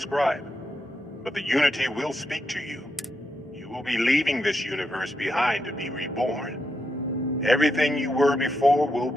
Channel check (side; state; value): both; normal; correlation 0.83